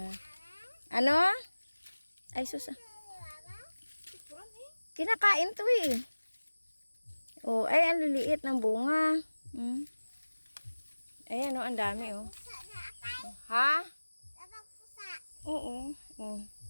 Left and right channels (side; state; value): both; inverted; correlation -1.00